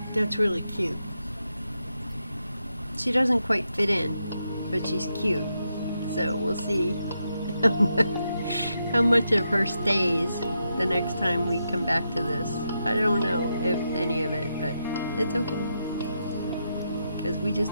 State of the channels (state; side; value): inverted; both; correlation -0.84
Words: really cute. She doesn't quite fit in, but she's cute. So we'll see how much of her stays the next time we come back to this. I don't know if any of it, but it's okay. Because we